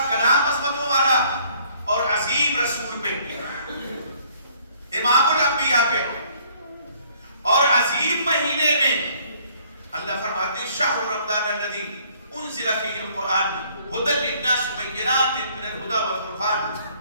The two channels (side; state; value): both; inverted; correlation -0.61